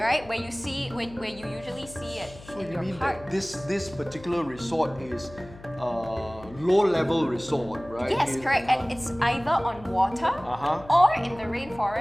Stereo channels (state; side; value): noise; left; hum, 18 dB below the sound